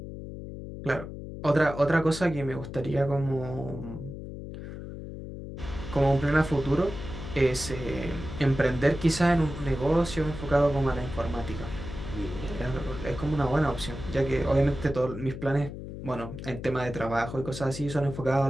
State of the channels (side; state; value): left; noise; hum, 10 dB below the sound